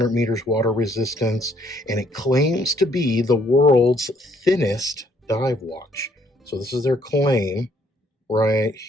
meters water resistance, and it claims to be the world's thinnest dive watch. So this is their claim right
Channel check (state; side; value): normal; both; correlation 0.66